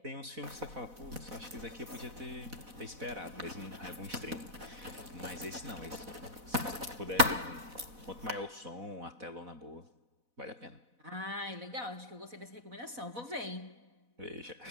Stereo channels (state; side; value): late; left; 4.1 ms